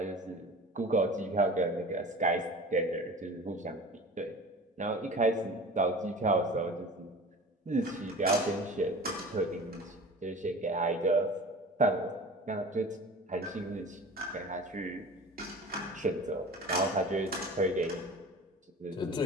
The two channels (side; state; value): both; normal; correlation 0.39